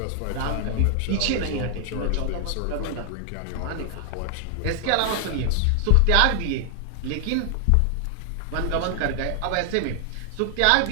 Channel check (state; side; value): different; both; correlation 0.00